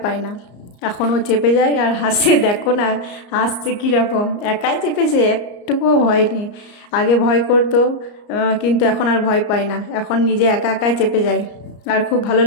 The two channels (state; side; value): late; right; 34 ms